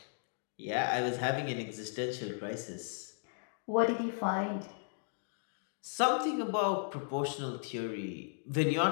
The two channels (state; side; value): silent; right; digital silence